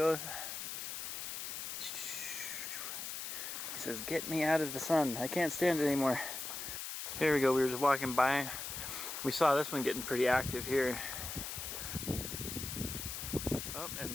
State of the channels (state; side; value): noise; left; hiss, 6 dB below the sound